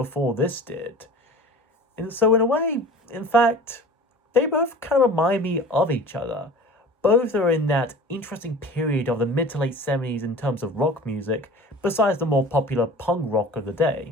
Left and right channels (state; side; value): normal; both; correlation 0.40